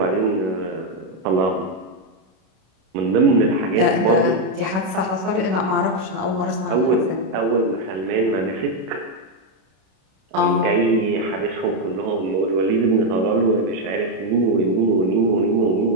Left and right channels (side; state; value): left; late; 32 ms